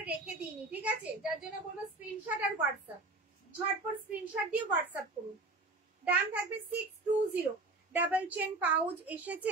রেখে দিইনি, ঠিক আছে, যার জন্য বলবো স্ক্রিনশট আর হোয়াটসঅ্যাপ, ঝটপট স্ক্রিনশট দিয়ে হোয়াটসঅ্যাপ করুন। দাম থাকবে 620। ডাবল চেন পাউচ এসেছে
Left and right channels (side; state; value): left; quieter; 3.2 dB